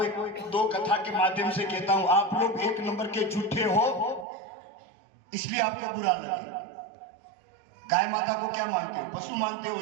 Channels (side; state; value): left; drops out; at 4.2 s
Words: दो कथा के माध्यम से कहता हूं, आप लोग एक नंबर के झूठे हो, इसलिए आपको बुरा लगे। गाय माता को क्या मानते हो? पशु मानते हो,